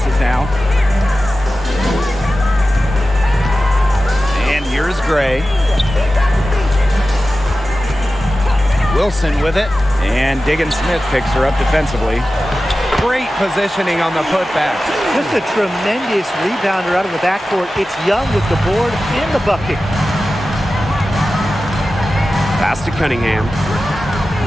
now. And here's Gray. Wilson with it. And Diggins-Smith picks her up defensively. Great positioning on the putback. Just a tremendous rebounder out of the backcourt. It's Young with the board and the bucket. Pass to Cunningham.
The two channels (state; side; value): normal; both; correlation 0.94